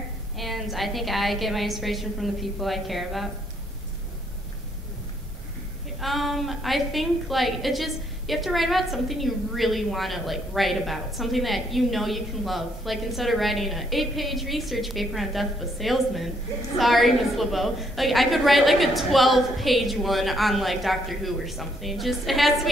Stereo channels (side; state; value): both; normal; correlation 0.71